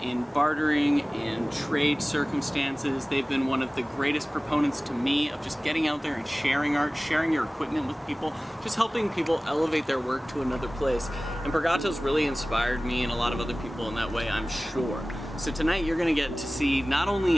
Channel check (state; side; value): normal; both; correlation 0.98